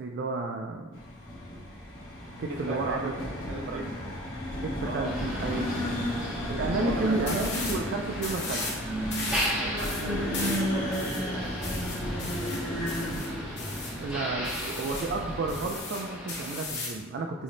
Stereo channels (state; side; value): normal; both; correlation 0.42